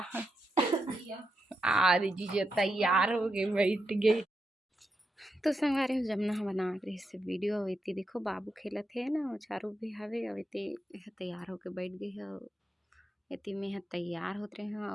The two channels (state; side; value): normal; both; correlation 0.85